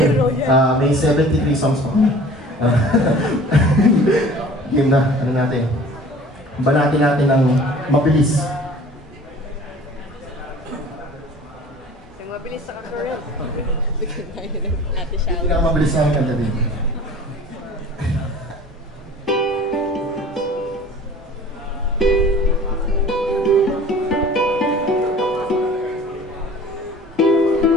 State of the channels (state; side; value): normal; both; correlation 0.46